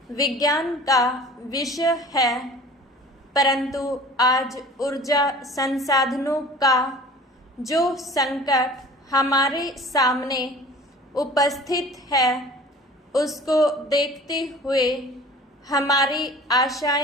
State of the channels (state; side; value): normal; both; correlation 0.45